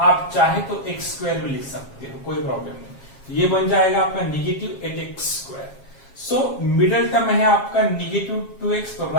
आप चाहे तो x स्क्वायर भी लिख सकते हो, कोई प्रॉब्लम नहीं. ये बन जाएगा आपका -8x square. So middle term है आपका -2x. तो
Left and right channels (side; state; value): right; late; 7.4 ms